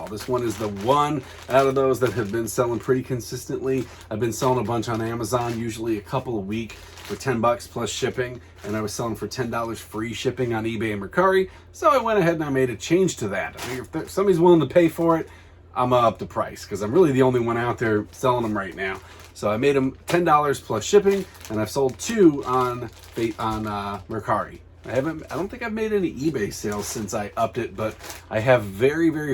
This one is the one out of those that have been selling pretty consistently. I've been selling a bunch on Amazon, usually a couple a week for $10 plus shipping, and I was selling for $10 free shipping on eBay and Mercari. So I went ahead and I made a change to that. I figured if somebody's willing to pay for it, I'm gonna up the price because I'm really the only one out there selling them right now. So I made them $10 plus shipping, and I've sold 2 on Mercari. I don't think I've made any eBay sales since I upped it, but I have very, very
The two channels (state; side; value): identical; both; correlation 1.00